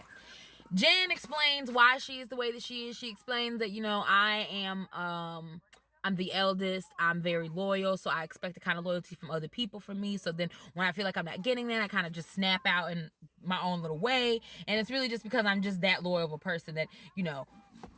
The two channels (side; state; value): both; identical; correlation 1.00